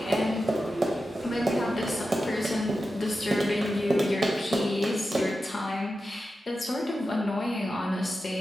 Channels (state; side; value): normal; both; correlation 0.91